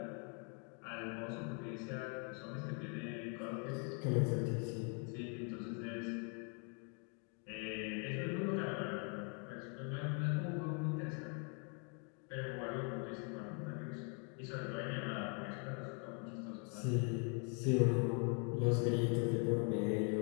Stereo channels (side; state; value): right; quieter; 38.7 dB